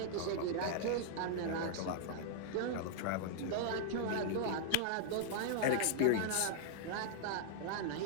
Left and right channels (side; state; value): both; different; correlation -0.01